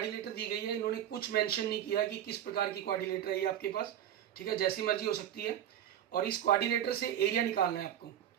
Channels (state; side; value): quieter; left; 10.7 dB